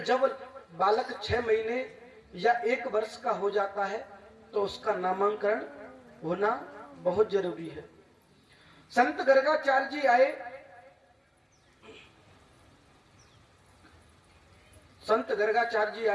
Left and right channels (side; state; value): both; identical; correlation 1.00